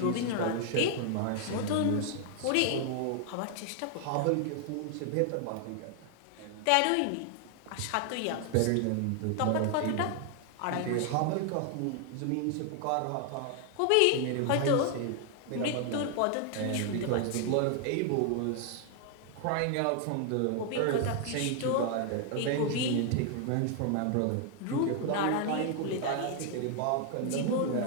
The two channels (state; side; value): different; both; correlation 0.00